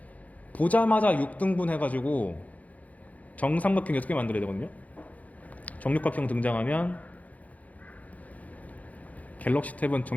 보자마자 6등분 해가지고 정삼각형 6개 만들어야 되거든요. 정육각형 등장하면 갤럭시 탭은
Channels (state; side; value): late; right; 0.073 ms